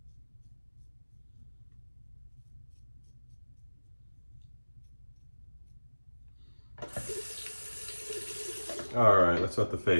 All right, let's wet the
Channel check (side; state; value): both; inverted; correlation -1.00